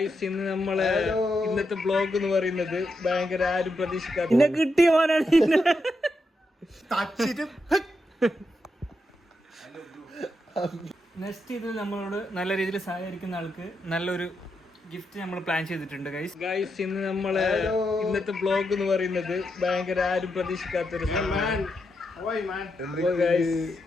ഇന്ന് നമ്മളെ ഇന്നത്തെ ബ്ലോഗ് എന്ന് പറയുന്നത് ഭയങ്കര ആരും പ്രതീക്ഷിക്കാത്ത കിട്ടിയ മോനാണ്. നെക്സ്റ്റ് ഇതിൽ നമ്മളോട് നല്ല രീതിയിൽ സഹകരിക്കുന്ന ആൾക്ക് നല്ലൊരു ഗിഫ്റ്റ് നമ്മൾ പ്ലാൻ ചെയ്തിട്ടുണ്ട് ഗൈസ്. ഇന്ന് നമ്മളെ ഇന്നത്തെ ബ്ലോഗ് എന്ന് പറയുന്നത് ഭയങ്കര ആരും പ്രതീക്ഷിക്കാത്തൊരു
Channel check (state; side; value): normal; both; correlation 0.84